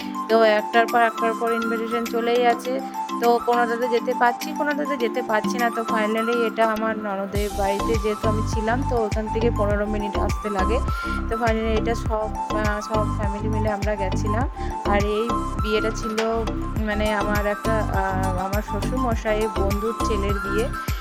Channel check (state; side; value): identical; both; correlation 1.00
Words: তো একটার পর ইনভিটেশন চলেই আছে। তো কোনোটাতে যেতে পারছি, কোনোটাতে যেতে পারছি না। তো ফাইনালি এটা আমার ননদের বাড়িতে, যেহেতু আমি ছিলাম তো ওখান থেকে 15 মিনিট আসতে লাগে। তো ফাইনালি এটা সব ফ্যামিলি মিলে আমরা গেছিলাম। আর এই বিয়েটা ছিল মানে আমার শ্বশুরমশাইয়ের বন্ধুর ছেলের বিয়ে।